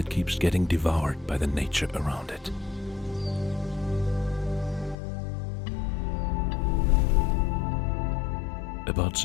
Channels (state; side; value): drops out; right; at 5.0 s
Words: keeps getting devoured by the nature around it. About